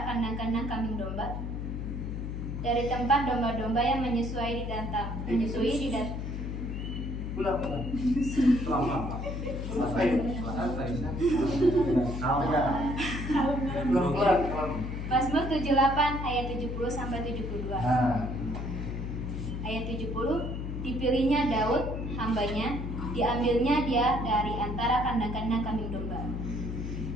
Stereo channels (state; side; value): noise; left; hum, 4 dB below the sound